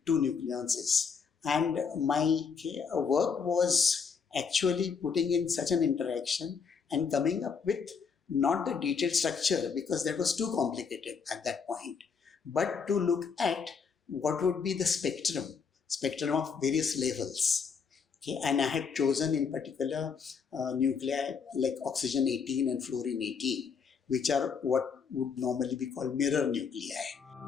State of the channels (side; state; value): right; quieter; 5.9 dB